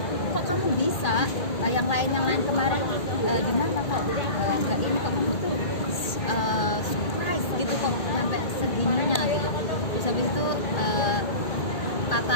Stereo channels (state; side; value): late; right; 1.8 ms